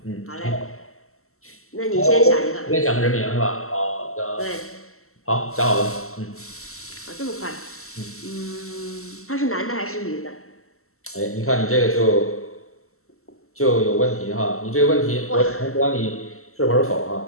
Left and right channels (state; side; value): late; right; 0.63 ms